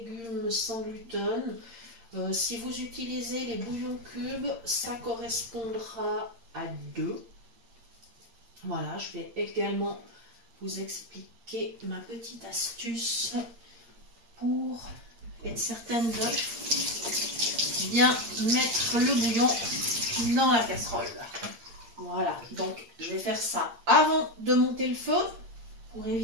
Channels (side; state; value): left; late; 8.7 ms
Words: sans gluten. Si vous utilisez les bouillons cubes, ça correspondra à 2. Voilà, je vais également vous expliquer ma petite astuce pour être certaine de bien mettre le bouillon dans la casserole. Voilà, donc je vais faire ça avant de monter le feu pour